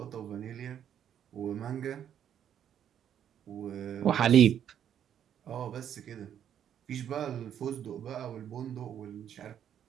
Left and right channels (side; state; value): left; quieter; 9.5 dB